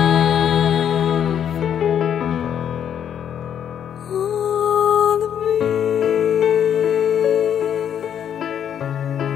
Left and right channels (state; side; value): quieter; right; 9.1 dB